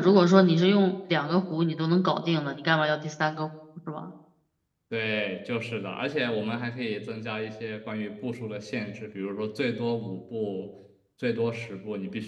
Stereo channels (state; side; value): identical; both; correlation 1.00